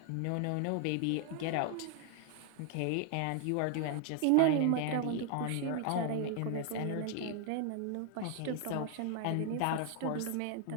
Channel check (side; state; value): both; different; correlation 0.00